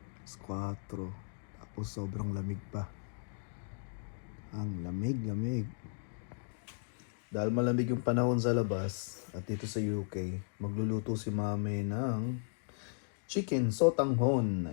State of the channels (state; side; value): silent; right; digital silence